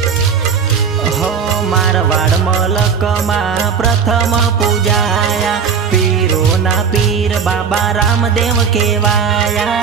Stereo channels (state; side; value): quieter; left; 6.4 dB